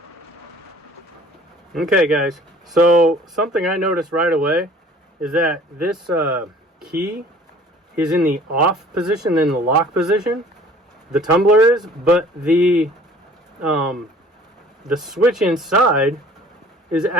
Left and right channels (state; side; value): normal; both; correlation 0.50